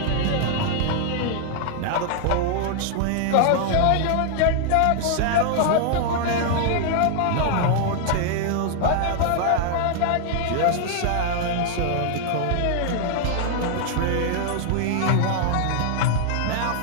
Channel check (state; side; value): different; both; correlation 0.00